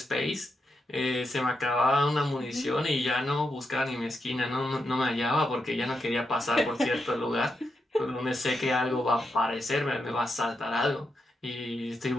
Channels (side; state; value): both; normal; correlation 0.85